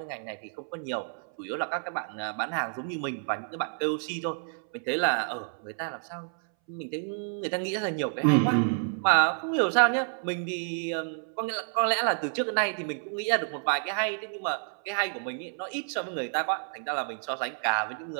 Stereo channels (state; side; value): silent; left; 58 dB below the other